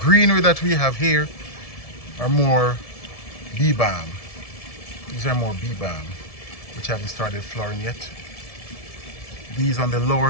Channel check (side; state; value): right; late; 1.7 ms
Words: that we have here are more bee balm. These are more bee balm, which haven't started flowering yet. These on the